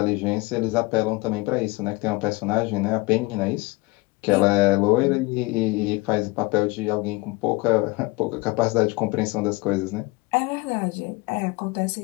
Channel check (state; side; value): quieter; right; 23.1 dB